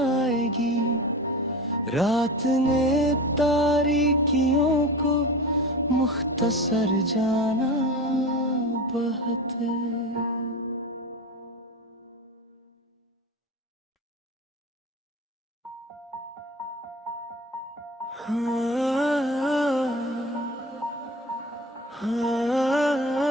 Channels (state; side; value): normal; both; correlation 0.31